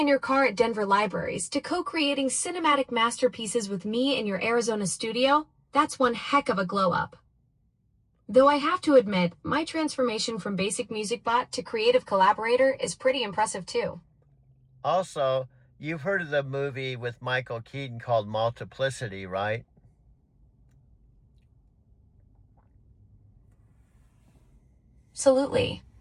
your car at Denver libraries to co-creating cinematic masterpieces with me in your Arizona studio, that's one heck of a glow-up. Though I have to admit, my transformation from basic music bot to creative collaborator is pretty impressive too. Also, you've heard of the movie with Michael Keaton called Multiplicity, right? Absolutely.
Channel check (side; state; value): both; identical; correlation 1.00